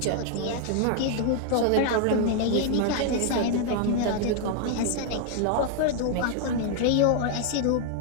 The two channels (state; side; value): different; both; correlation 0.00